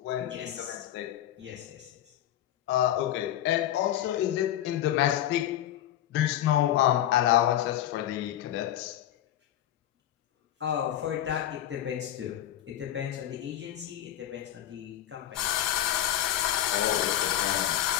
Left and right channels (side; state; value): right; quieter; 12.2 dB